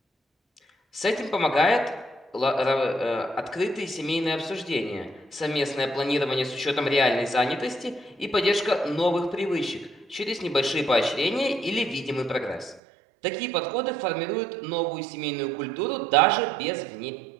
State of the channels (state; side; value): drops out; left; at 12.8 s